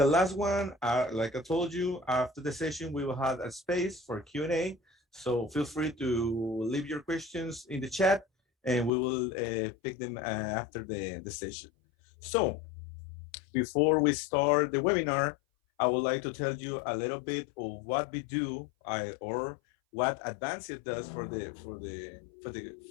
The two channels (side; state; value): right; drops out; at 8.9 s